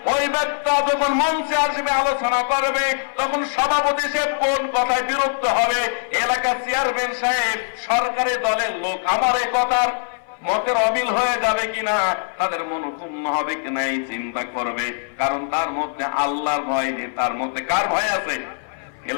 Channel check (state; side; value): silent; right; 58 dB below the other